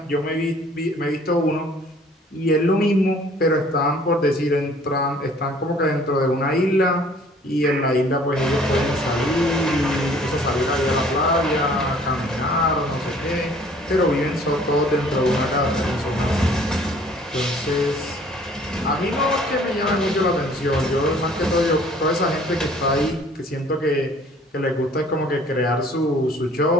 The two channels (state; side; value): normal; both; correlation 0.55